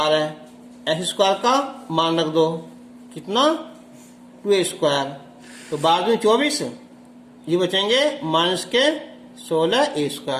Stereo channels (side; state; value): both; identical; correlation 1.00